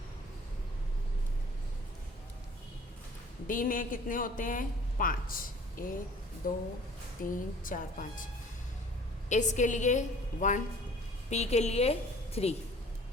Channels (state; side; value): normal; both; correlation 0.50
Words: डी में कितने होते हैं, 5, 1 2 3 4 5. एस के लिए 1, पी के लिए 3,